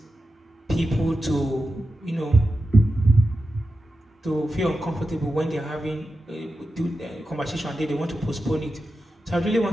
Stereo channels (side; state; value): both; normal; correlation 0.91